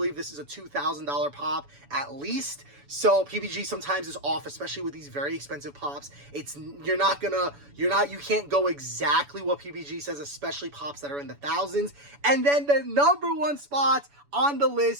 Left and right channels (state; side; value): late; left; 7.0 ms